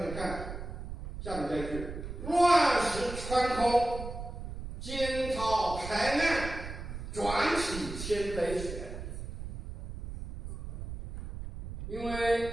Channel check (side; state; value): right; noise; rumble, 8 dB below the sound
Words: 看下面这一句：乱石穿空，惊涛拍岸，转起千杯雪。因为